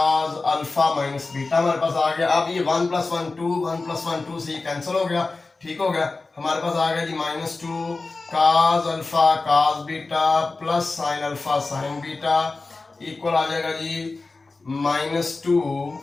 अल्फा माइनस बीटा हमारे पास आ गया। अब ये 1 + 1 2, 1 + 1 2 से ये कैंसिल हो गया, ठीक हो गया। हमारे पास आ गया जी -2 cos alpha cos beta plus sine alpha sine beta equal आ जाएगा जी -2,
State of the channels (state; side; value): quieter; right; 3.6 dB